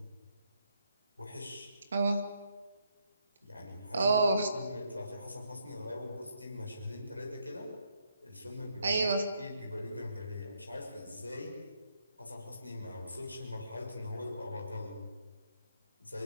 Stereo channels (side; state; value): both; inverted; correlation -0.75